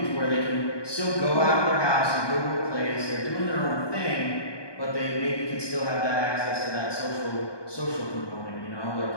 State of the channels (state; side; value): late; right; 1.2 ms